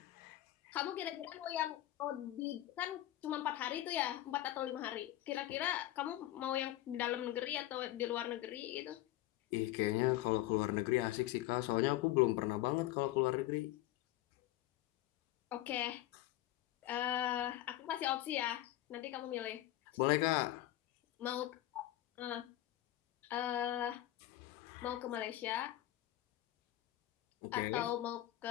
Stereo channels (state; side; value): quieter; right; 14.9 dB